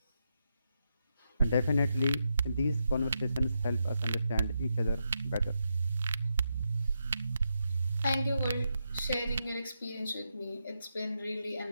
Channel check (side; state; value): both; inverted; correlation -0.84